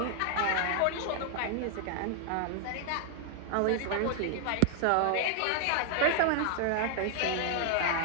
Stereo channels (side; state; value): both; different; correlation 0.00